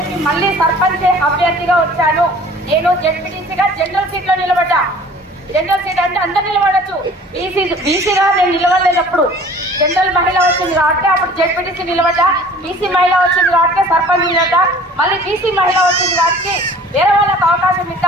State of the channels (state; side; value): normal; both; correlation 0.48